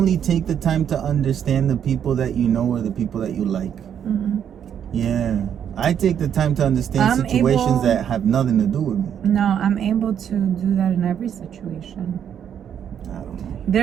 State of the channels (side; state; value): left; quieter; 8.9 dB